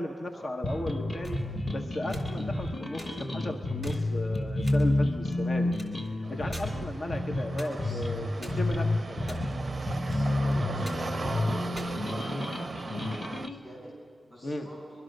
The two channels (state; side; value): normal; both; correlation 0.93